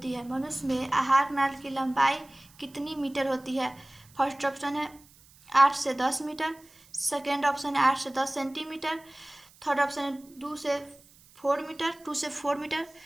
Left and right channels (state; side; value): noise; right; hiss, 26 dB below the sound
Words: है? मनुष्य में आहार नाल की लंबाई कितनी मीटर होती है? फर्स्ट ऑप्शन है 8 से 10 मीटर, सेकेंड ऑप्शन है 8 से 10 सेंटीमीटर, थर्ड ऑप्शन है 2 से 4 मीटर,